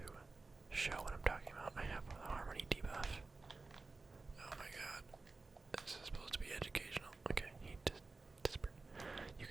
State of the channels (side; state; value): left; quieter; 3.7 dB